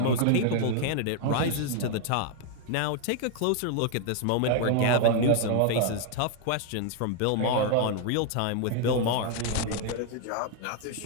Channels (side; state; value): both; different; correlation 0.00